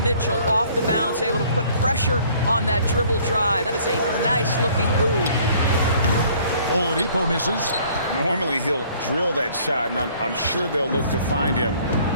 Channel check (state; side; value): inverted; both; correlation -0.57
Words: Mitchell off the bounce, able to put pressure on that dribble drive. That is a nice-looking move. Oladipo misses. Normally he'll drill that shot, and I'm sure they'll look to find him